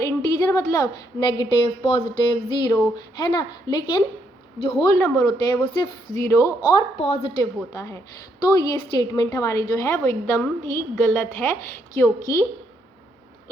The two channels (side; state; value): both; normal; correlation 0.74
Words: इंटीजर मतलब नेगेटिव, पॉजिटिव, ज़ीरो, है ना। लेकिन जो होल नंबर होते हैं वो सिर्फ ज़ीरो और पॉजिटिव होता है। तो ये स्टेटमेंट हमारी जो है वो एकदम ही गलत है, क्योंकि